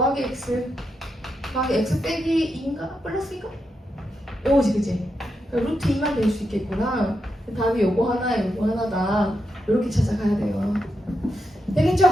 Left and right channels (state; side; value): normal; both; correlation 0.85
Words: x 더하기 x 빼기 2인가? 플러스인가? 요거지 그치? 그러니까 루트 2만 될 수 있겠구나. 답이 요거 하나에 요거 하나다. 이렇게 찾아가야 돼요. 되겠죠?